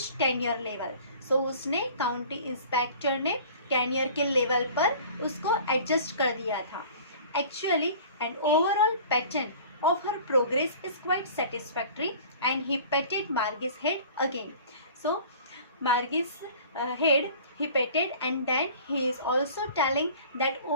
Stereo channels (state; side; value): inverted; both; correlation -0.45